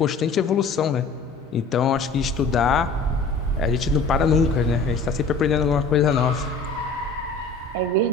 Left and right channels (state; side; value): quieter; right; 3.9 dB